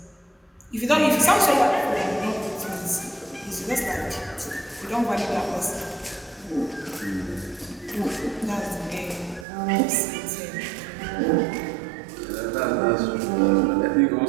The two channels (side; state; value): left; drops out; at 9.5 s